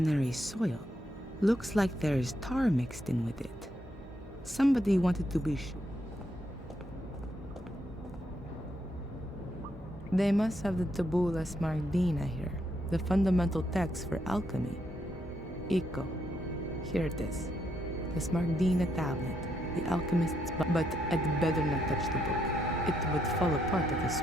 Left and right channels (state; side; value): normal; both; correlation 0.77